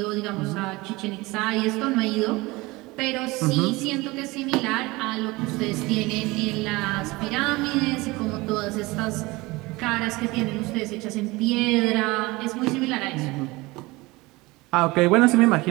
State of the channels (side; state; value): left; quieter; 22.1 dB